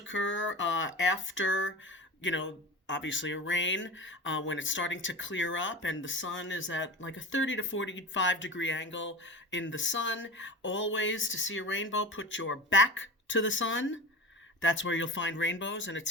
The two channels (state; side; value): normal; both; correlation 0.31